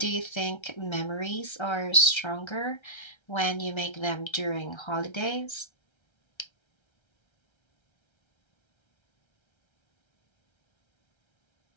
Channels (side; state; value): right; late; 1.3 ms